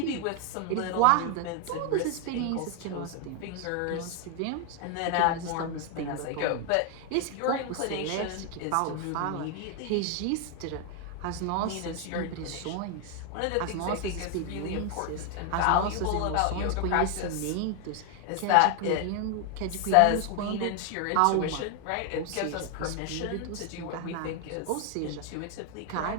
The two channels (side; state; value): both; different; correlation 0.00